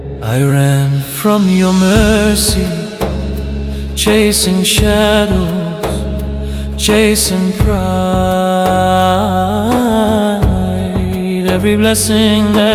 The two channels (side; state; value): both; identical; correlation 1.00